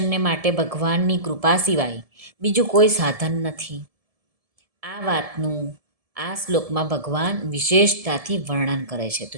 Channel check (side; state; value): left; late; 1.7 ms